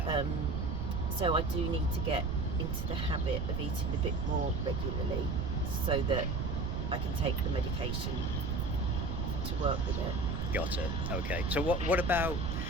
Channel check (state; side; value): noise; right; rumble, 2 dB below the sound